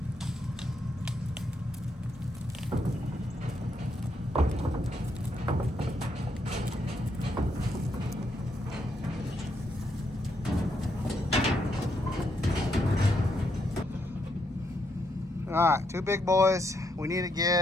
All right, 2 big boys. We need to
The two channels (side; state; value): both; normal; correlation 0.77